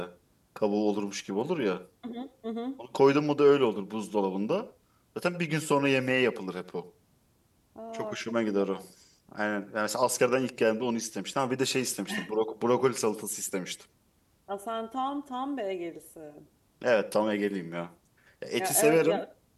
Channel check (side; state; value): both; identical; correlation 1.00